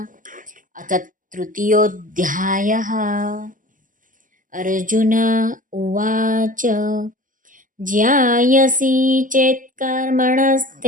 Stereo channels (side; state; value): left; late; 0.38 ms